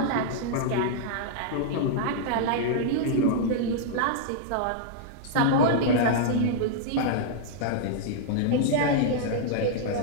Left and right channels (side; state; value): both; different; correlation -0.01